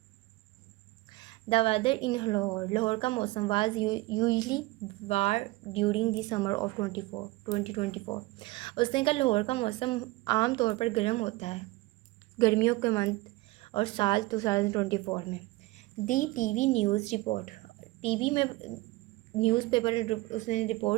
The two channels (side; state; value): left; quieter; 20.9 dB